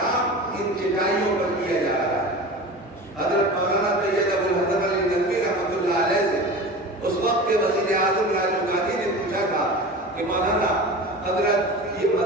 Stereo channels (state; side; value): normal; both; correlation 0.33